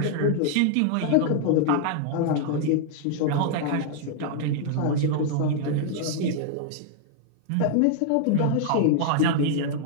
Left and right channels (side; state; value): both; different; correlation -0.01